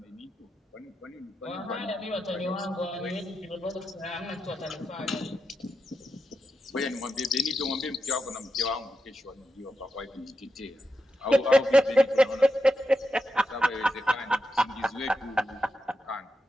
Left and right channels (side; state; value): both; normal; correlation 0.87